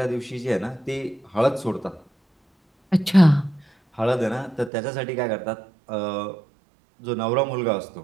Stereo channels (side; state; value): left; drops out; at 4.7 s